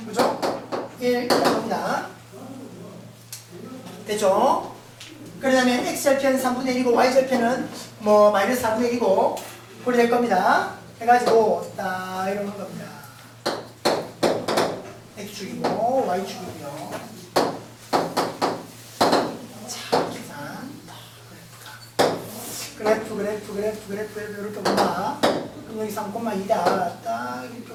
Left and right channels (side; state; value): both; identical; correlation 1.00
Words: 그죠? 1 갑니다. 됐죠? 그러면 x절편 3분의 1이고 y절편은 뭐 마이너스 4분의 1이고 그렇게 될 겁니다. 해가지고 딱 이런 겁니다. x축이고 y축이고요. 자, 계산. 그래프 이렇게 본다. 그럼 여기 3,2다. 딱 이렇게